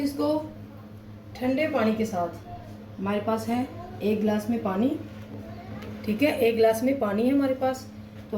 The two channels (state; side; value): identical; both; correlation 1.00